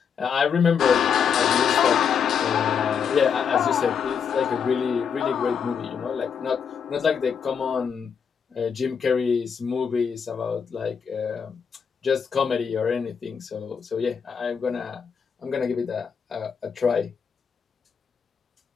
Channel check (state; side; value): quieter; right; 6.8 dB